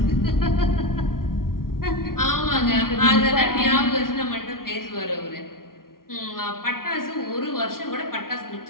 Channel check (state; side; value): late; right; 0.92 ms